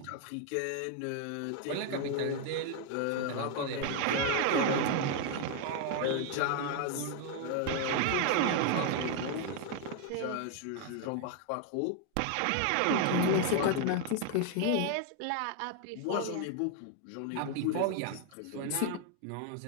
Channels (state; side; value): different; both; correlation 0.00